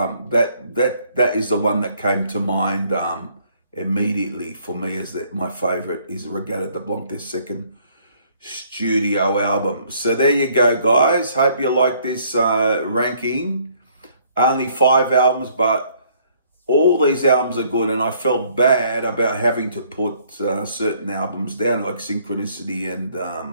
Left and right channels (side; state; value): both; inverted; correlation -0.63